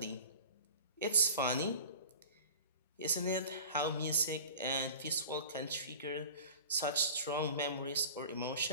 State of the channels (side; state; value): both; inverted; correlation -0.39